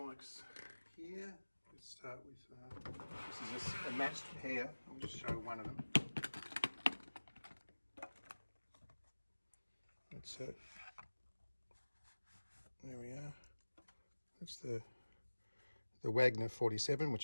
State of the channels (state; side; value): inverted; both; correlation -1.00